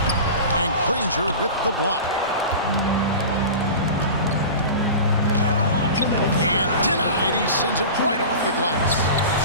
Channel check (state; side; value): inverted; both; correlation -0.33